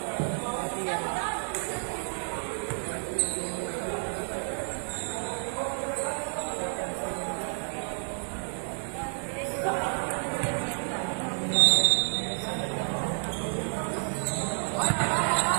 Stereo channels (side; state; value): left; silent; 58 dB below the other